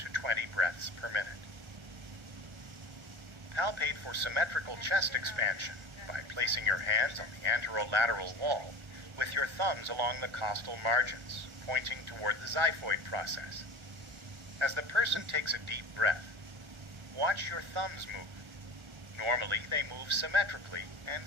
20 breaths per minute. Palpate for symmetrical chest expansion by placing your hands on the anterolateral wall with your thumbs along the costal margins, pointing toward the xiphoid process. As the person takes a deep breath, watch your thumbs move. Normally, they move symmetrically and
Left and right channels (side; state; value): left; late; 1.4 ms